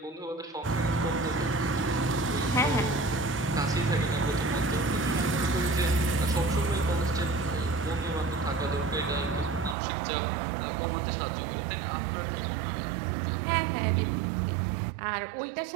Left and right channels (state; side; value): drops out; left; at 9.8 s